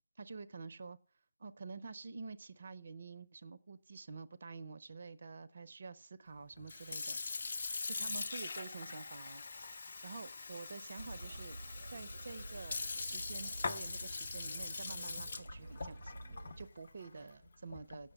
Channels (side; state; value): both; inverted; correlation -0.88